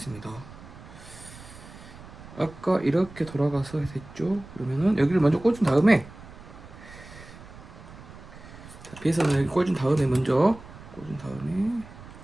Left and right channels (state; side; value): noise; right; rumble, 17 dB below the sound